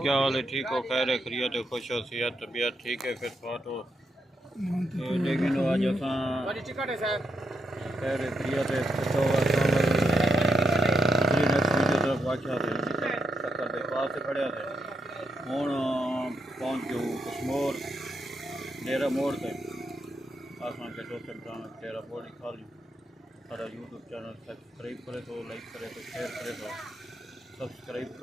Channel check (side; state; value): both; normal; correlation 0.82